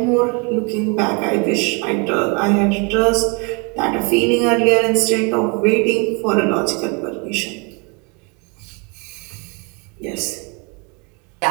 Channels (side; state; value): left; quieter; 32.1 dB